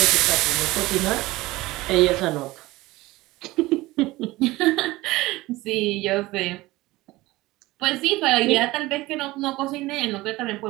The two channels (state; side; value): quieter; left; 19.4 dB